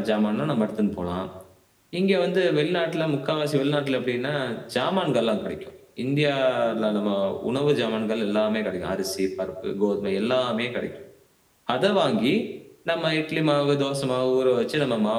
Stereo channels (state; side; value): identical; both; correlation 1.00